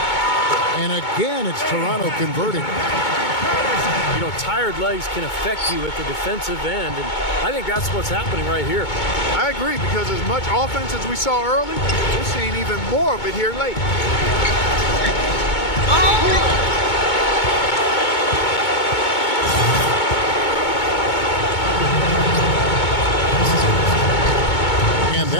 And again, it's Toronto converting. You know, tired legs can affect you at the defensive end, and I think that's what's happening right here. I agree, because as much offense as we saw early, we're seeing even more of it here late. And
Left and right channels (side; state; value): right; late; 2.2 ms